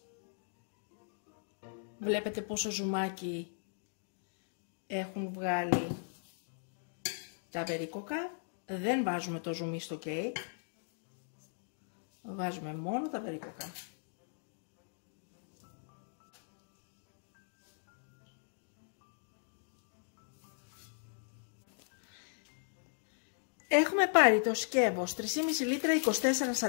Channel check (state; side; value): silent; right; digital silence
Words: Βλέπετε πόσο ζουμάκι έχουν βγάλει τα βερίκοκα. Δεν βάζουμε το ζουμί στο κέικ. Βάζουμε μόνο τα βερίκοκα. Έχουμε πάρει το σκεύος 3,5 λίτρα 24